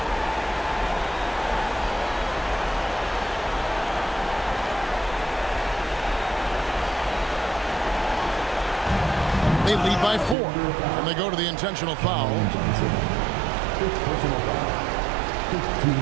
They lead by 4, and they go to the intentional foul. Fifth personal foul. 15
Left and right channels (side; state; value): left; drops out; at 10.4 s